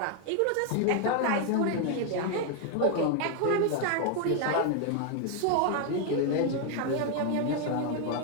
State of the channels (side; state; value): both; different; correlation 0.00